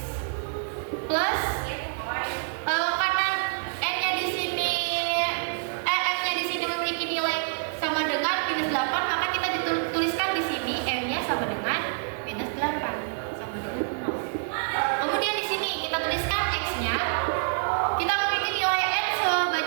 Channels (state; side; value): silent; left; digital silence